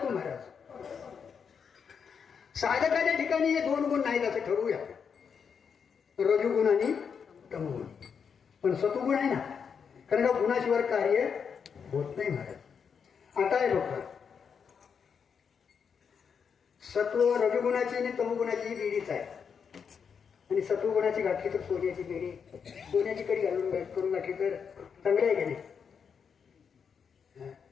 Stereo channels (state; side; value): quieter; right; 6.6 dB